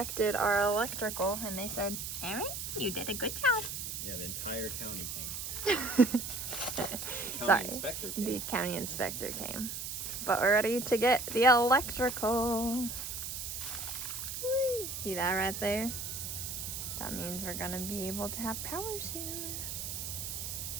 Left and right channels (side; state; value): right; noise; hiss, 5 dB below the sound